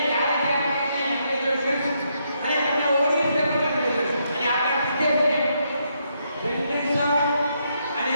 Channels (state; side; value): inverted; both; correlation -0.77